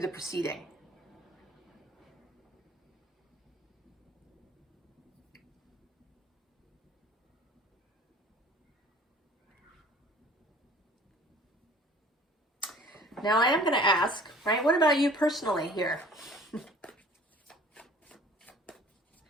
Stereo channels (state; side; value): normal; both; correlation 0.50